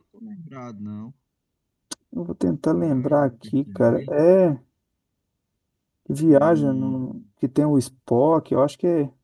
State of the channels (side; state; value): both; identical; correlation 1.00